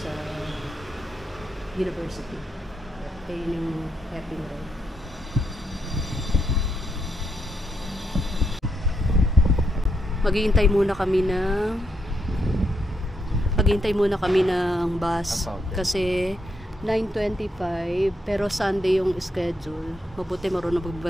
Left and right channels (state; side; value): normal; both; correlation 0.80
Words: university. Kaya yung Heping Road. Maghihintay muna kami ng bus kasi 9:25 pero Sunday yung schedule. Mabuti marunong